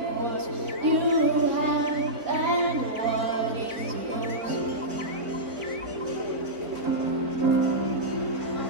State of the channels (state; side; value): late; left; 4.0 ms